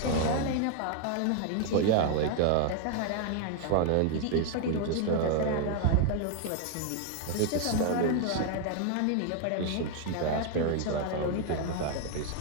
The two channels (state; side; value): different; both; correlation 0.00